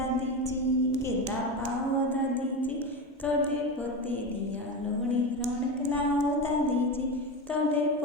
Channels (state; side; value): normal; both; correlation 0.21